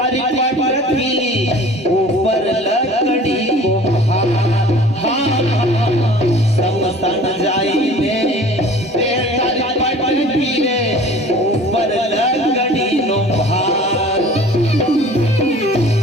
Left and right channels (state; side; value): normal; both; correlation 0.46